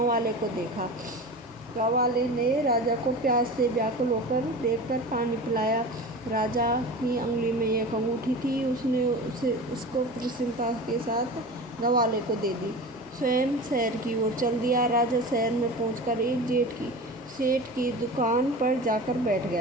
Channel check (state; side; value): normal; both; correlation 0.33